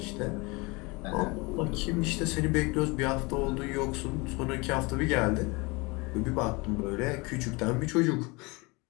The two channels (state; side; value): quieter; right; 26.3 dB